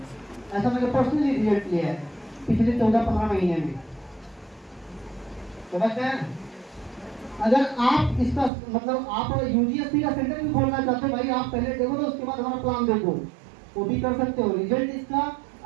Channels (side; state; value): left; drops out; at 8.5 s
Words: ऐसा मैंने पर्सनली रिजल्ट लिया है पिछले 14-15 महीने में। समझ गए? अगर आप इसका मतलब आप यूजीएससी का सेंटर भी खोलना चाहते हो, भाई आप पहले देखो तो उसके बाद हमारा प्लान देखो, वो भी कर सकते हो। रिजल्ट इसका